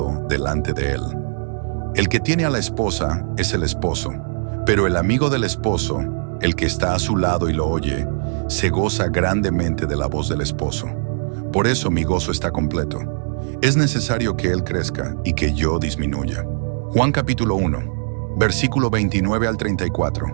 delante de él. El que tiene a la esposa es el esposo, pero el amigo del esposo, el que está a su lado y lo oye, se goza grandemente de la voz del esposo. Por eso mi gozo está completo. Es necesario que él crezca y que yo disminuya. Juan capítulo 1, versículo 29 al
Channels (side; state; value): left; silent; digital silence